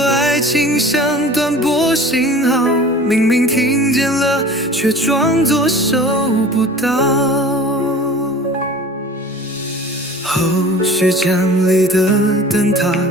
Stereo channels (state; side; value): normal; both; correlation 0.43